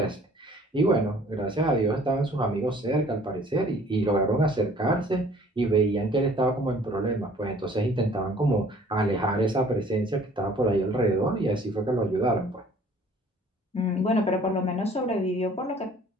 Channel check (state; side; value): normal; both; correlation 0.54